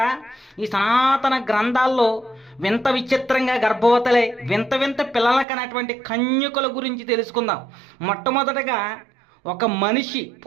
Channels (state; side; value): drops out; left; at 5.5 s